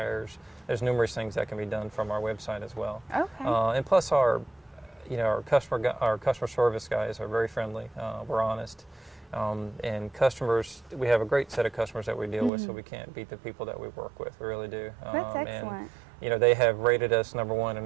There's numerous things that can be done from our website as well. And plus our customer service guys are very friendly. We're honest. And customers, we have a great set of customers that we deal with, so we can't beat the people that we work with. We really do. That's excellent. And, you know, they have rated us #1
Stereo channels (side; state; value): left; drops out; at 12.5 s